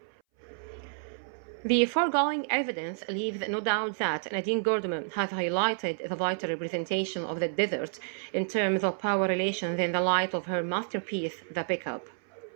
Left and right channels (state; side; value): silent; left; 58 dB below the other